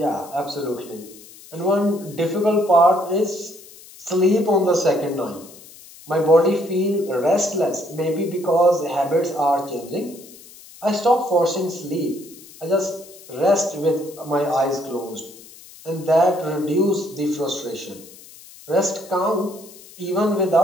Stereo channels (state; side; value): noise; left; hiss, 20 dB below the sound